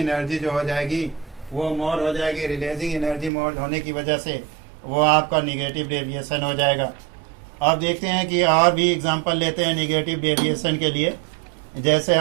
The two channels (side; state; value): left; drops out; at 3.3 s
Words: जो हो जाएगी वो मोर हो जाएगी। रिलीजिंग एनर्जी मोर होने की वजह से वो आपका निगेटिव डेविएशन हो जाएगा। अब देखते हैं कि और भी एग्जांपल लेते हैं नेगेटिव डेविएशन के लिए। जैसे